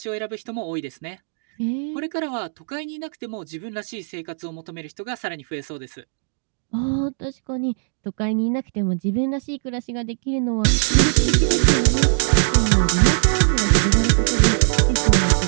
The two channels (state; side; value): silent; left; digital silence